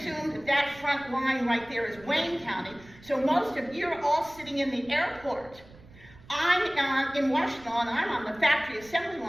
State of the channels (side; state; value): right; noise; rumble, 23 dB below the sound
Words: that that front line right there is Wayne County, so most of you are all sitting in the airport. I'm in Washtenaw, and I'm on the factory assembly